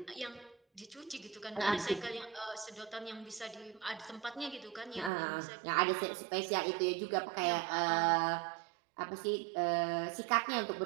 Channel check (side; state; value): left; drops out; at 5.1 s